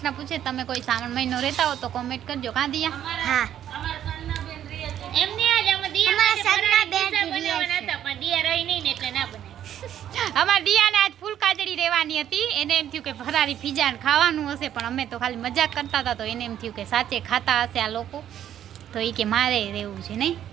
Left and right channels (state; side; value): quieter; left; 10.6 dB